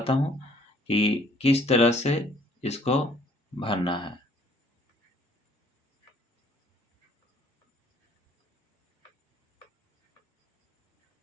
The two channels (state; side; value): normal; both; correlation 0.60